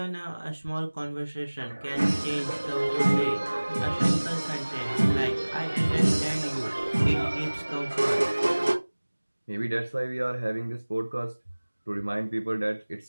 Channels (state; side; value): inverted; both; correlation -1.00